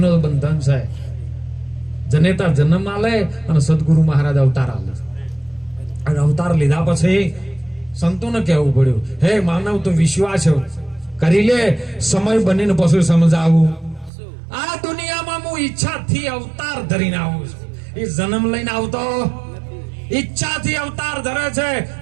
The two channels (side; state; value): left; drops out; at 14.1 s